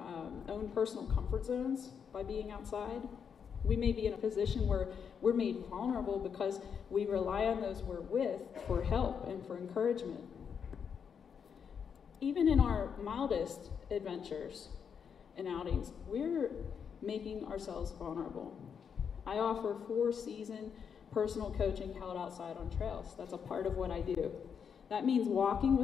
own personal comfort zones by being outside. We may be in a position where we're made vulnerable because we rely on those we're with for help and for encouragement. Even in our mildest adventures and outings, we're making ourselves vulnerable. I offer 4-season personal coaching held outside on trails. That's a part of what I do. That means walking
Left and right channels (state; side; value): quieter; right; 7.0 dB